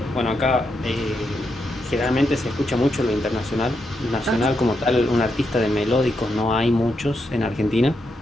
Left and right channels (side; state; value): both; normal; correlation 0.83